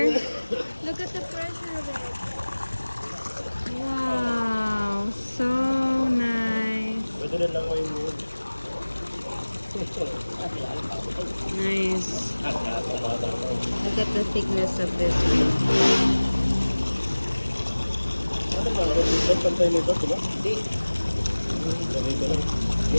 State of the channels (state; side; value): inverted; both; correlation -1.00